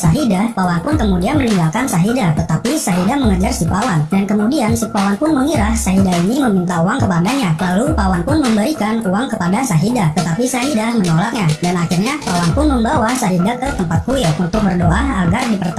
Pawan pun kemudian meninggalkan Syahidah. Tetapi Syahidah mengejar si Pawan, dan kemudian si Pawan pun mengira Syahidah ini meminta uang kepadanya. Lalu Pawan pun memberikan uang kepada Syahidah, tetapi Syahidah menolaknya. Dan akhirnya Pawan pun membawa Syahidah ke tempat kuil untuk berdoa agar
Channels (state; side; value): identical; both; correlation 1.00